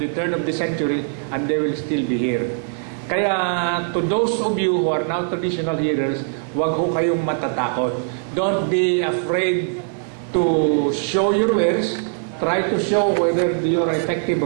turn of the century, and they will still be here. Kaya to those of you who are now traditional healers, wag ho kayong matatakot. Don't be afraid to show your wares. Try to show whether you are effective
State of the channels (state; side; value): silent; left; 65 dB below the other